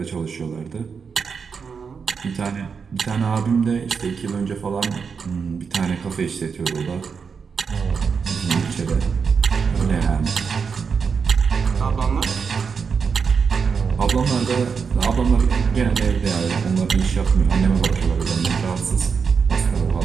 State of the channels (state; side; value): quieter; left; 5.8 dB